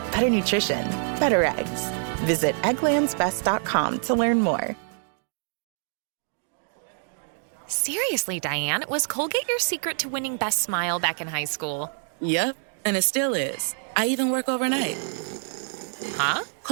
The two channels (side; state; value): left; silent; digital silence